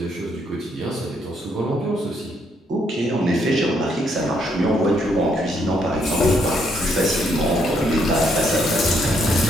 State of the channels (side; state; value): both; normal; correlation 0.73